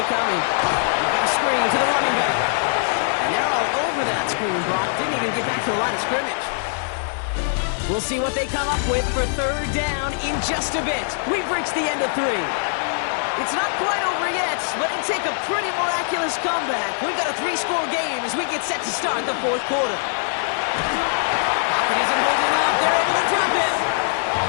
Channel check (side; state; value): right; silent; digital silence